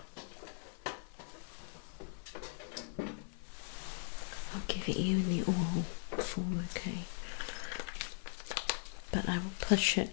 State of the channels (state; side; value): silent; right; 52 dB below the other